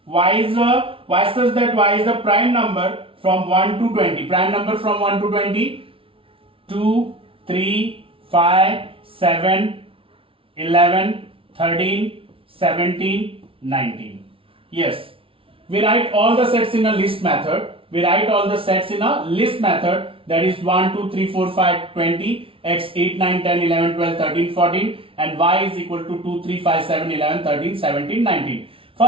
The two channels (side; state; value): left; late; 0.26 ms